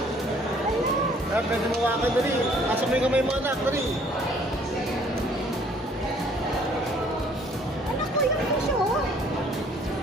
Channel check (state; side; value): normal; both; correlation 0.59